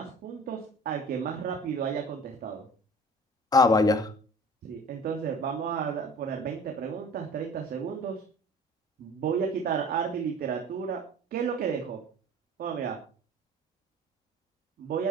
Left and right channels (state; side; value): normal; both; correlation 0.44